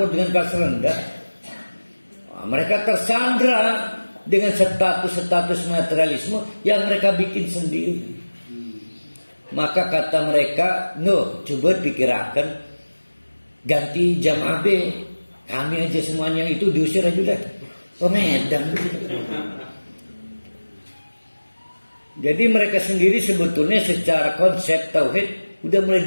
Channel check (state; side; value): inverted; both; correlation -1.00